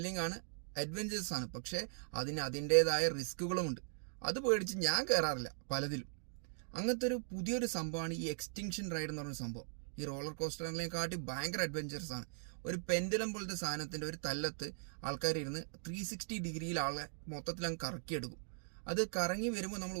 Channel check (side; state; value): left; silent; digital silence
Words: ആണ്, അഡ്വഞ്ചേഴ്സ് ആണ്. പക്ഷേ അതിന് അതിൻ്റെതായ റിസ്കുകളുമുണ്ട്. അത് പേടിച്ച് ഞാൻ കയറാറില്ല പലതിലും. അങ്ങനത്തെ ഒരു പുതിയൊരു സംഭവമാണ് ഈ എക്സ്റ്റിങ്ഷൻ റൈഡ് എന്ന് പറഞ്ഞ സംഭവം. ഈ റോളർ കോസ്റ്ററിനെക്കാട്ടി ഭയങ്കര അഡ്വഞ്ചേഴ്സ് ആണ്. ഒരു പെൻഡുലം പോലത്തെ സാധനത്തിന്റെ ഒരു തല്ലത്ത് ആൾക്കാർ ഇരുന്ന് 360 ഡിഗ്രിയിൽ ആളെ മൊത്തത്തിൽ അങ്ങ് കറക്കിയെടുക്കും. അത് കറങ്ങി വരുമ്പോൾ നമ്മൾ